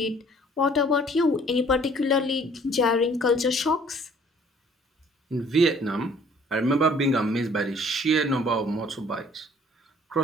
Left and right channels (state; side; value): normal; both; correlation 0.56